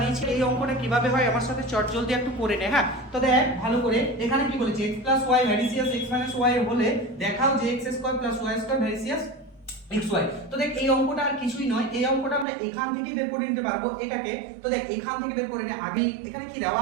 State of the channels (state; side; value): drops out; left; at 12.5 s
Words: এই অঙ্কটা কিভাবে হয় আমার সাথে চট জলদি একটু করে নে। হ্যাঁ, তো দেখ ভালো করে, এখানে কি বলেছে, x plus y varies as x minus y হলে দেখাও যে x square plus y square varies as xy। তো দেখ, এই অঙ্কটা আর কিছুই নয়, এই অঙ্কটা আমরা এখান থেকেই বের করে নিতে পারবো এটাকে। তো দেখ, এখান থেকে বের করে নে। আগে এখানে কি দেওয়া